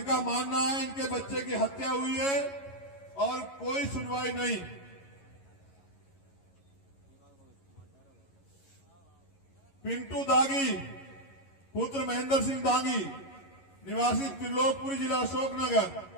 मानना है इनके बच्चे की हत्या हुई है और कोई सुनवाई नहीं। पिंटू दागी पुत्र महेंद्र सिंह दागी निवासी त्रिलोकपुरी जिला अशोकनगर,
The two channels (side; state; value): right; late; 11 ms